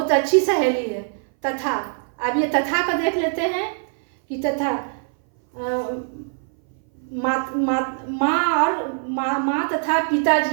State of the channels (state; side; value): silent; left; 60 dB below the other